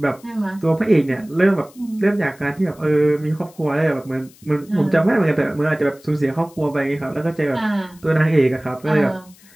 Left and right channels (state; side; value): noise; left; hiss, 26 dB below the sound